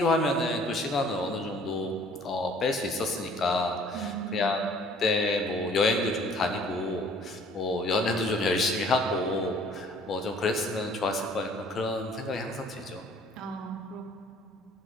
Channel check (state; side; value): normal; both; correlation 0.55